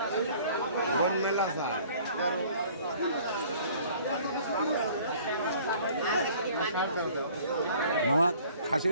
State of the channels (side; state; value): both; inverted; correlation -0.53